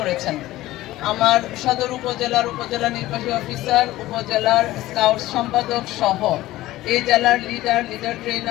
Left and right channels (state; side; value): quieter; right; 16.4 dB